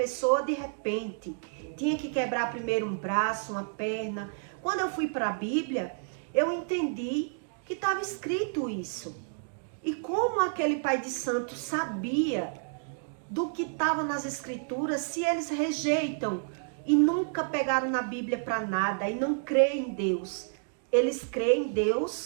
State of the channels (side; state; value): left; silent; digital silence